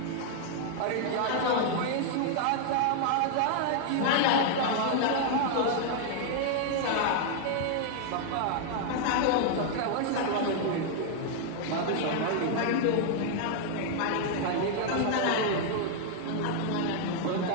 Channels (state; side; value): different; both; correlation 0.00